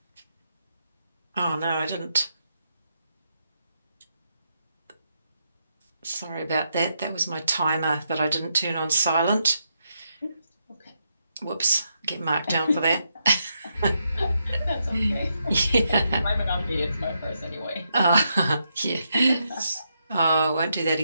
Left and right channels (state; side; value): inverted; both; correlation -0.81